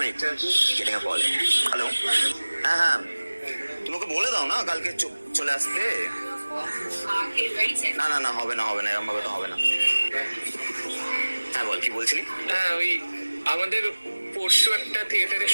getting a call. Hello, হ্যাঁ হ্যাঁ, তুমি ওকে বলে দাও না কালকে চলে আসতে। না না না, হবে না এরকম ভাবে তো হবে না। হ্যাঁ বল, কি বলছিলি? হ্যাঁ, ওই আমাদের পরশু একটা থিয়েটারে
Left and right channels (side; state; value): both; inverted; correlation -1.00